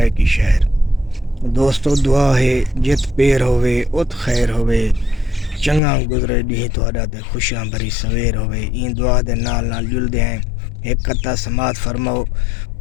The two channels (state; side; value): drops out; right; at 5.8 s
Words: شہر۔ دوستو دعا ہے جت پیر ہوئے ات خیر ہوئے، چنگا گزرے ڈی تہاڈا تے خوشیاں بھری سویر ہوئے۔ این دعا دے نال جلدے ہیں ایک قطع سماعت فرماؤ،